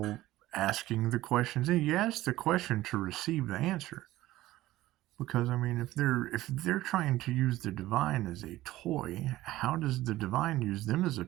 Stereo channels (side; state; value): left; quieter; 16.2 dB